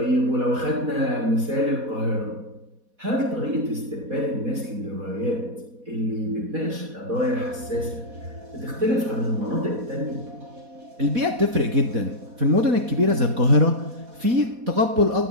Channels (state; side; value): late; left; 4.1 ms